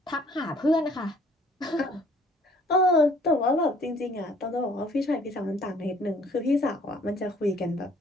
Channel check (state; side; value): normal; both; correlation 0.58